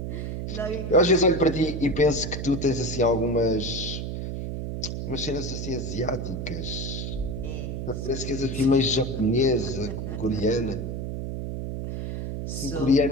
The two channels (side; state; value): right; noise; hum, 4 dB below the sound